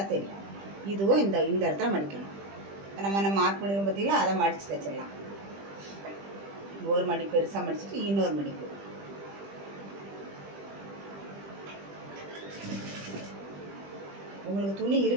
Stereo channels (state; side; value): late; left; 20 ms